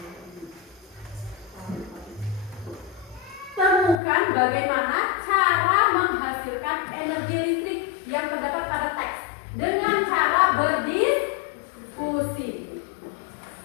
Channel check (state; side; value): drops out; right; at 4.0 s